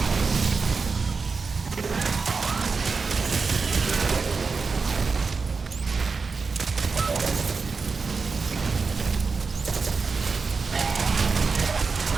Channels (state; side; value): quieter; left; 4.7 dB